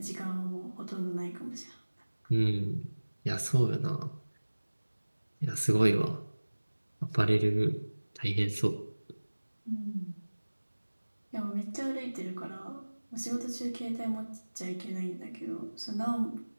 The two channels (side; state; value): both; inverted; correlation -1.00